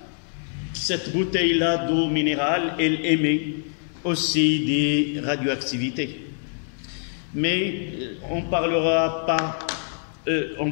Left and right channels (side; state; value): right; silent; digital silence